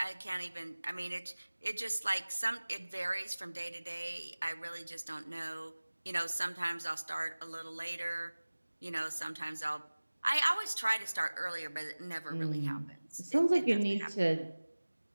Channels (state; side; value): inverted; both; correlation -1.00